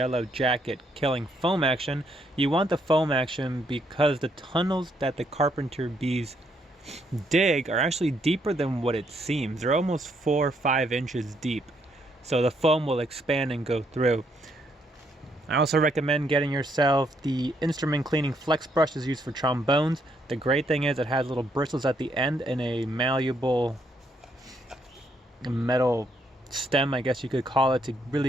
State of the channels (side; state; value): both; normal; correlation 0.73